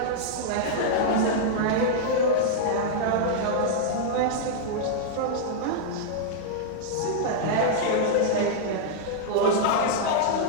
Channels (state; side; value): different; both; correlation -0.02